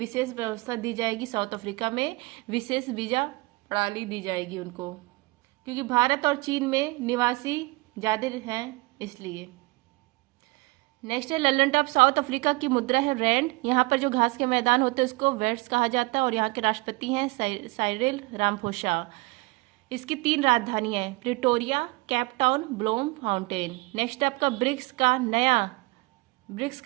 व्यवस्था दी जाएगी। साउथ अफ्रीका में विशेष वीजा प्रणाली दी जाएगी उनको, क्योंकि भारत और चीन में निवासी ज्यादा हैं इसलिए। नेक्स्ट है, लल्लन टॉप साउथ अफ्रीका की मुद्रा है रैंड। यहाँ पर जो घास के मैदान होते हैं उसको वेट्स कहा जाता है और यहाँ के राष्ट्रपति हैं साइरिल रामाफोसा। इसकी 3 राजधानी है, Pretoria, Cape Town, Blom fountain. Next आपका ब्रिक्स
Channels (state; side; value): quieter; left; 24.7 dB